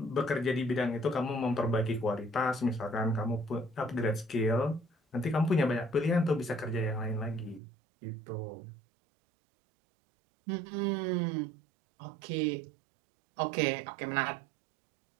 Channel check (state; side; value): drops out; left; at 7.6 s